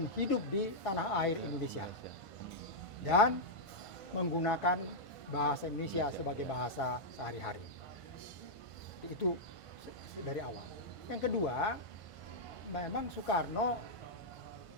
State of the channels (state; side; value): late; right; 1.5 ms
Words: hidup di tanah air Indonesia. Dan menggunakan bahasa Indonesia sebagai bahasa sehari-hari. Itu dari awal. Yang kedua, memang Soekarno